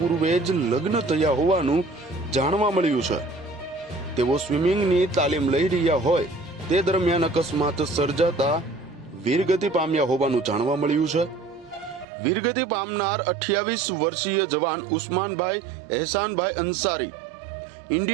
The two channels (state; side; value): drops out; left; at 12.1 s